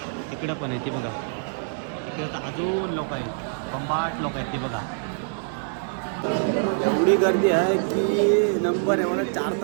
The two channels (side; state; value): left; silent; digital silence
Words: तिकडं पण आहे. ती बघा इकडे तर अजून लोक आहेत, कंबाट लोक आहेत. ते बघा एवढी गर्दी आहे की नंबर आहे मला 4